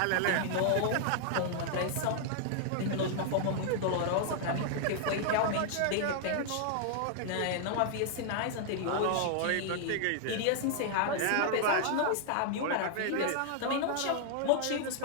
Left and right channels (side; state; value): both; different; correlation -0.01